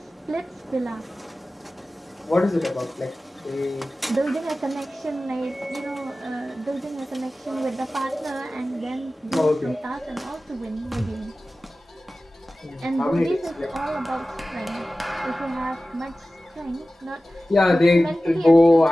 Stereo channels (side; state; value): both; normal; correlation 0.96